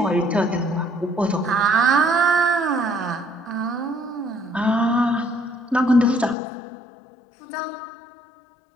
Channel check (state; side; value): drops out; right; at 6.4 s